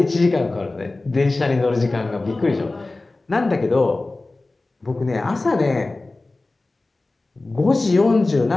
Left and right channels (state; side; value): quieter; right; 3.1 dB